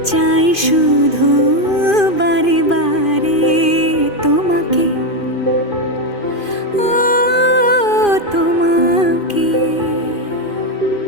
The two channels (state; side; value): late; right; 2.5 ms